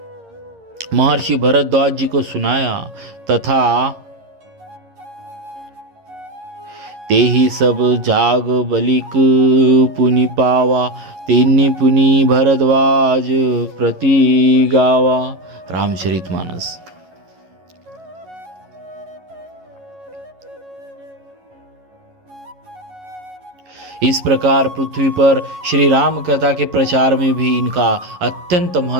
महर्षि भरद्वाज जी को सुनाया तथा ते ही सब जाग बलिक पुनि पावा, तेनी पुनि भरद्वाज प्रति गावा। रामचरितमानस। इस प्रकार पृथ्वी पर श्री राम कथा के प्रचार में भी इनका अत्यंत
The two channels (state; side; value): late; left; 11 ms